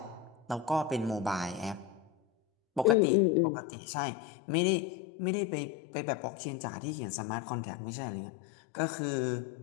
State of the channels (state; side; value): drops out; right; at 3.0 s